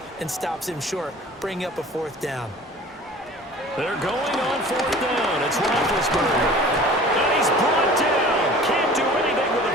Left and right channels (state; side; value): normal; both; correlation 0.44